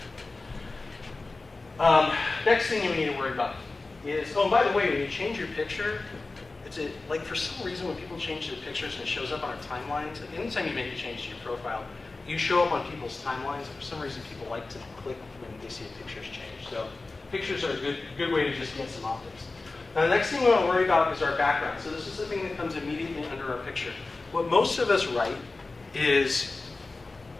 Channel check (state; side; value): quieter; right; 3.5 dB